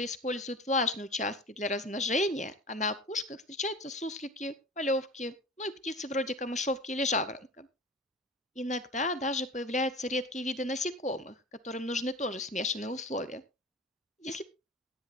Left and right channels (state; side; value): normal; both; correlation 0.36